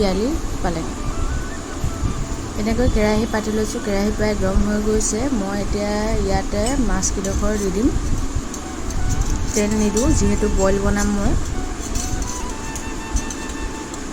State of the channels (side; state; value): both; identical; correlation 1.00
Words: পালেং। এনেকৈ কেৰাহী পাতি লৈছোঁ, কেৰাহী প্ৰায় গৰম হৈ গৈছে। মই এতিয়া ইয়াতে মাছকেইডোখৰ দি দিম। তেল নিদিওঁ যিহেতু বইল বনাম মই।